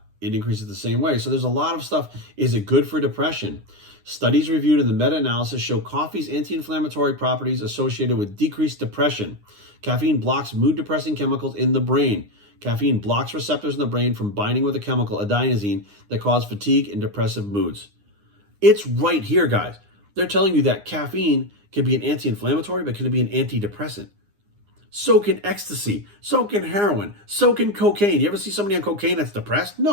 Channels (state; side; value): late; left; 9.8 ms